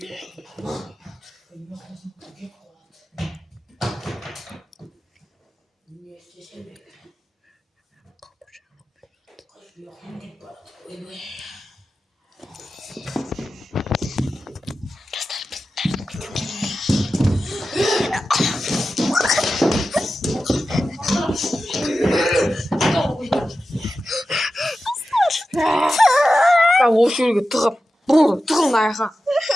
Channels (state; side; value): normal; both; correlation 0.93